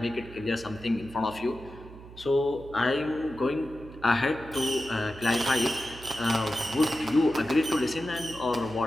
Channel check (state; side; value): noise; right; hum, 17 dB below the sound